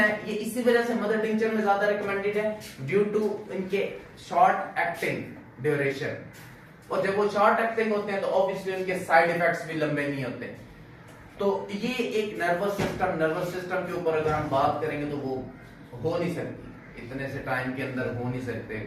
ये इसी वजह से मदर टिंचर में ज्यादा रिकमेंडेड है, ड्यू टू इनके शॉर्ट एक्टिंग ड्यूरेशन। और जब वो शॉर्ट एक्टिंग होते हैं तो ऑब्वियसली उनके साइड इफेक्ट्स भी लंबे नहीं होते। तो ये एक नर्वस सिस्टम के ऊपर अगर हम बात करेंगे तो वो हो नहीं सकती, इतने से टाइम के अंदर हो नहीं सकते।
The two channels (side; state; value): both; identical; correlation 1.00